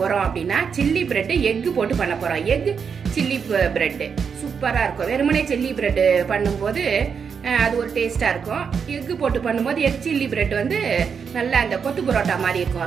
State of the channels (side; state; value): left; quieter; 6.4 dB